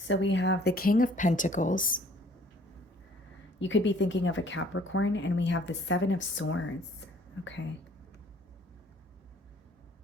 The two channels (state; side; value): normal; both; correlation 0.57